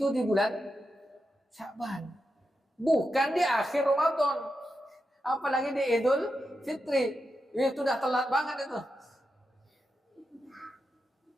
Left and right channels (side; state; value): both; normal; correlation 0.88